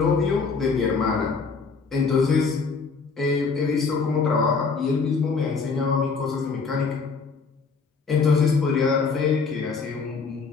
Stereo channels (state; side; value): quieter; right; 4.9 dB